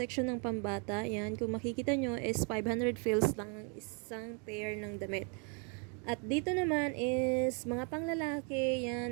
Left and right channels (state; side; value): quieter; left; 37.3 dB